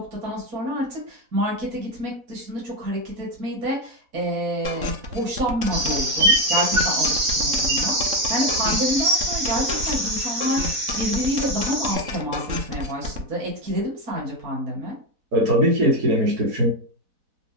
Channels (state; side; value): late; left; 4.1 ms